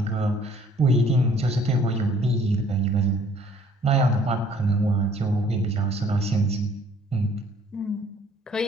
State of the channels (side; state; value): both; normal; correlation 0.58